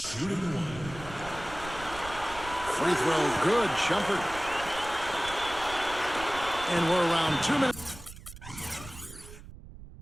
one. Free throw, good. Shumpert. And we're around 2 minutes.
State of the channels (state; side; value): noise; right; rumble, 15 dB below the sound